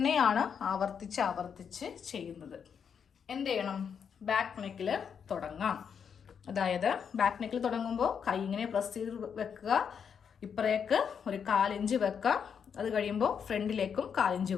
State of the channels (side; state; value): right; quieter; 7.1 dB